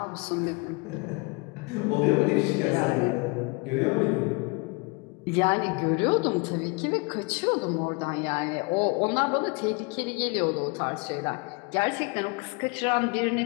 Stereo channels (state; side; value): quieter; right; 29.2 dB